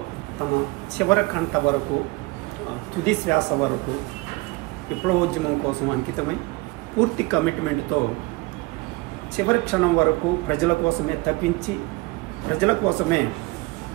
తమ చివరి కంట వరకు, తుది శ్వాస వరకు విప్లవోద్యమం కోసం అంకితమై పూర్తి కమిట్మెంట్తో చివరి క్షణం వరకు ప్రజల కోసమే తప్పించి ప్రజల కోసమే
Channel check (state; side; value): quieter; left; 23.5 dB